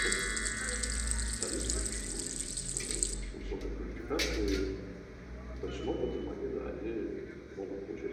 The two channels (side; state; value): both; identical; correlation 1.00